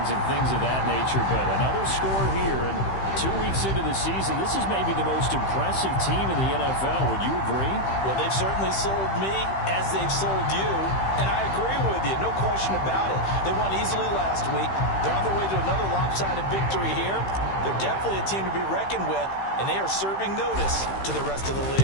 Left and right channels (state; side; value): late; right; 15 ms